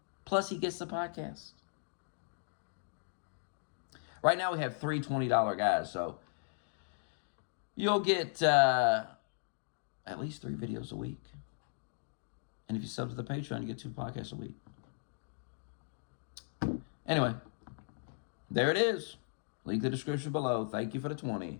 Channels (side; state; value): right; silent; digital silence